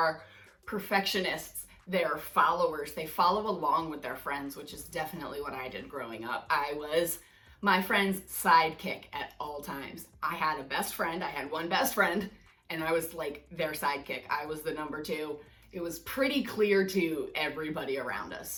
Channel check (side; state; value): both; identical; correlation 1.00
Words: perfectionists. They're followers. They follow along with their friends, which is definitely what I did growing up. I was my friend's sidekick at all times. I had a best friend. I had one best friend, and I was like their sidekick. I was the number two. It was pretty clear to everybody around